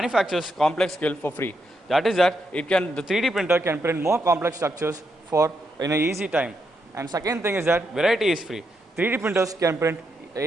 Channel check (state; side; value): normal; both; correlation 0.81